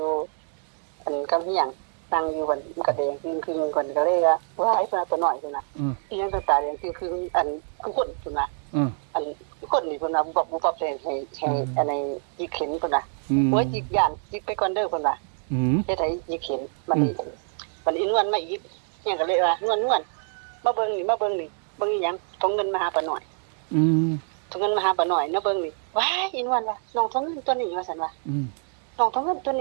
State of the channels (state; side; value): silent; left; 61 dB below the other